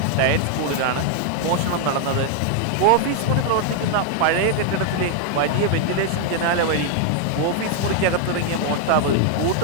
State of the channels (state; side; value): different; both; correlation 0.00